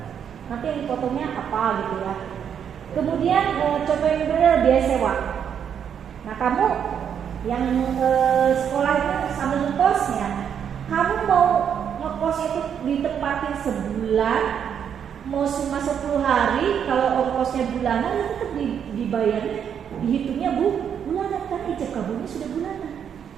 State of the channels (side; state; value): left; quieter; 8.2 dB